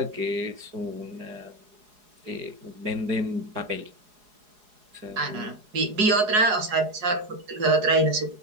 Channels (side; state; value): left; late; 4.8 ms